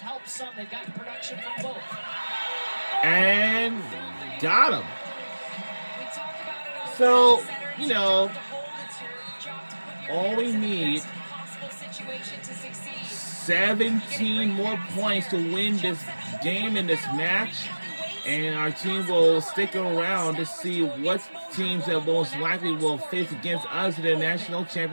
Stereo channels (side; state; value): both; inverted; correlation -1.00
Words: helped some. They've gotten production from both. And got him. So, all we need 17 more points to win this game in this match. And our team will stick around to see what teams that most likely will face against us in the national